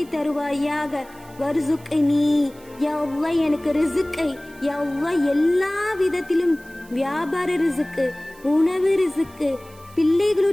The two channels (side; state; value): right; noise; hiss, 25 dB below the sound